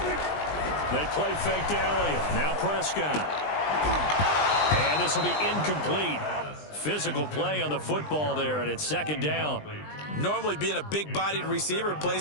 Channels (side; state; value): right; late; 20 ms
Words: They play fake to Elliott. Now Prescott. And this will be incomplete. Physical play on the football there, and it's second down. Normally being a big-bodied receiver